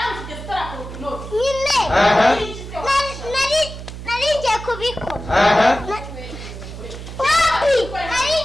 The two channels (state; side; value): noise; right; hum, 11 dB below the sound